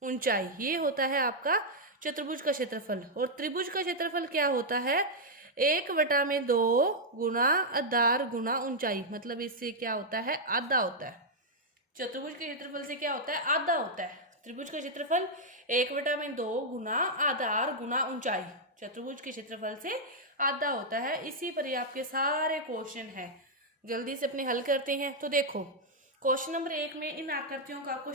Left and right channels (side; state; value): both; normal; correlation -0.03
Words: ऊंचाई। ये होता है आपका चतुर्भुज का क्षेत्रफल। और त्रिभुज का क्षेत्रफल क्या होता है? 1/2 गुना आधार गुना ऊंचाई, मतलब इससे क्या होता है? आधा होता है। चतुर्भुज के क्षेत्रफल से क्या होता है? आधा होता है। त्रिभुज का क्षेत्रफल 1/2 गुना आधार गुना ऊंचाई, चतुर्भुज के क्षेत्रफल से आधा होता है। इसी पर ही आपके सारे क्वेश्चन है। जल्दी से अपने हल करते हैं। तो देखो, क्वेश्चन नंबर 1 में इन आकृतियों का आपको